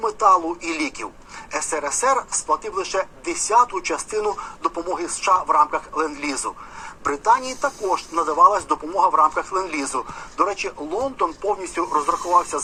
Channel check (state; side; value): identical; both; correlation 1.00